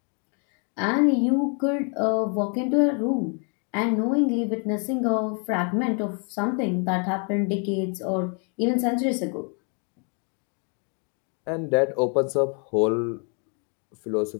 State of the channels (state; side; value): quieter; right; 38.7 dB